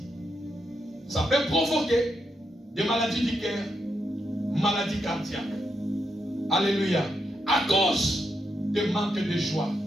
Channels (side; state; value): both; normal; correlation 0.82